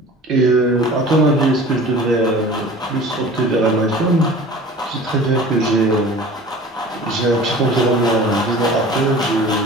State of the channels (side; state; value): both; normal; correlation 0.42